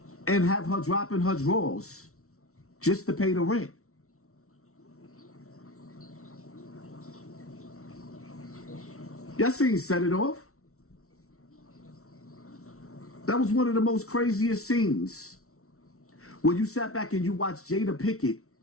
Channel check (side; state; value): right; late; 0.63 ms